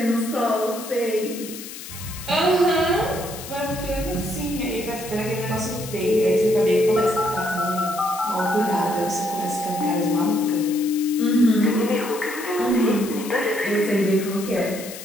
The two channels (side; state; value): left; noise; hiss, 12 dB below the sound